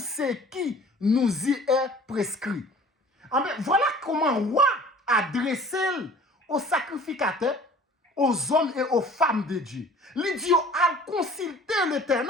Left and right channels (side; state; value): both; normal; correlation 0.48